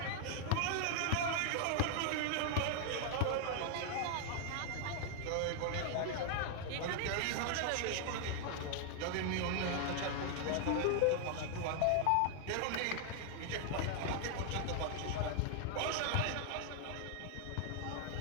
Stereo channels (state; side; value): different; both; correlation 0.00